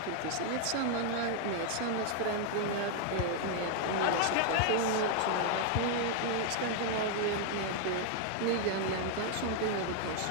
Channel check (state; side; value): different; both; correlation 0.00